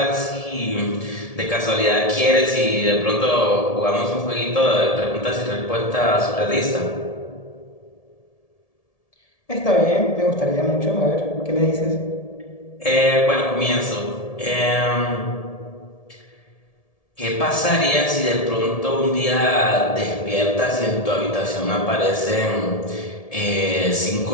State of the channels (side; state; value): right; late; 1.7 ms